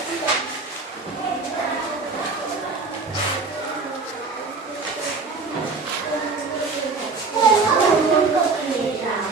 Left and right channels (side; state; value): left; quieter; 4.2 dB